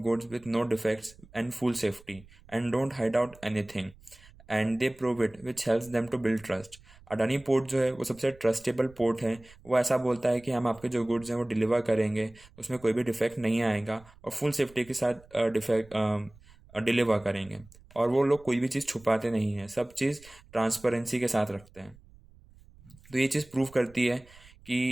with no defects and full safety and don't hide out anything. And they prove it which helps them to build trust. Adani port जो है वो सबसे trustable port है। वो ऐसा बोलता है कि हम आपके जो गुड्स हैं वो डिलीवर करेंगे, उसमें कोई भी डिफेक्ट नहीं आएगा और फुल सेफ्टी के साथ डिफेक्ट डिलीवर करेंगे। और वो लोग कोई भी चीज़ छुपाते नहीं हैं, सब चीज़ ट्रांसपेरेंसी के साथ रखते हैं। तो ये चीज़ प्रूव करती है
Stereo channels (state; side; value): noise; right; rumble, 25 dB below the sound